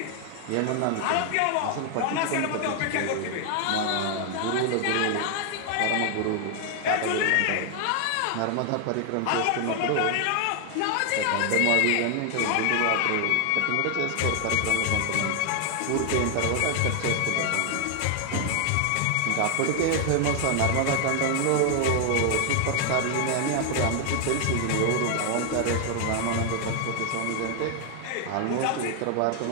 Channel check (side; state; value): both; different; correlation 0.00